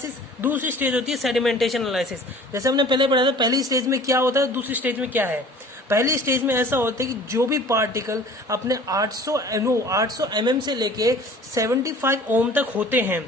दूसरी स्टेज होती है सेडिमेंटेशन एनालिसिस। जैसे हमने पहले पढ़ा था, पहली स्टेज में क्या होता है, दूसरी स्टेज में क्या है। पहली स्टेज में ऐसा होता है कि जो भी पार्टिकल अपने 800 mm से लेके 75 ओम तक होते हैं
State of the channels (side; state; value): both; normal; correlation 0.47